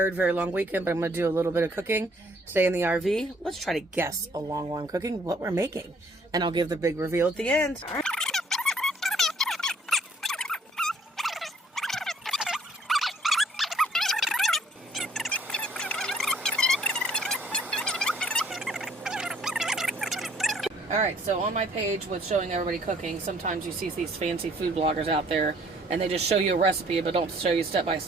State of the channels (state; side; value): normal; both; correlation 0.61